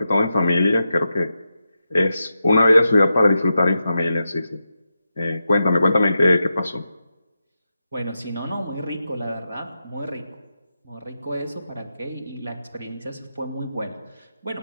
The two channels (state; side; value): inverted; both; correlation -0.88